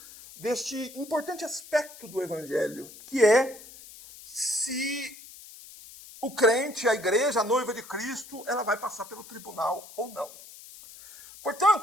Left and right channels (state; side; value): noise; left; hiss, 18 dB below the sound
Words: deste importante aspecto do Evangelho, que é se o crente, a igreja, a noiva de Cristo, ela vai passar pelo tribunal ou não.